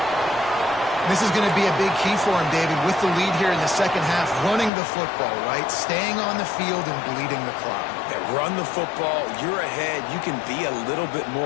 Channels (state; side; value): drops out; right; at 4.7 s